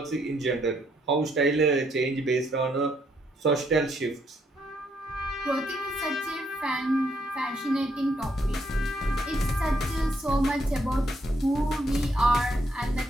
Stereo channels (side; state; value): both; normal; correlation 0.73